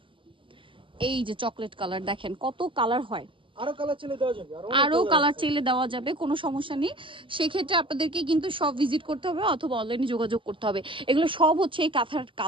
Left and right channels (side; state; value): left; late; 0.25 ms